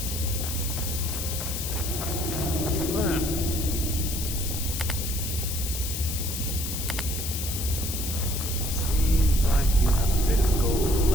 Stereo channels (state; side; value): noise; left; hiss, 4 dB below the sound